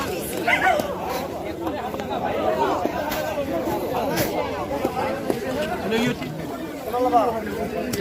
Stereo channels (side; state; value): both; identical; correlation 1.00